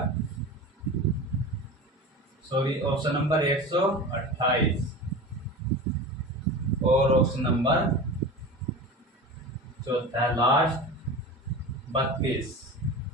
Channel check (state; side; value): normal; both; correlation 0.31